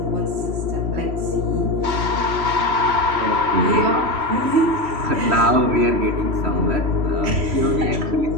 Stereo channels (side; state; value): left; late; 3.1 ms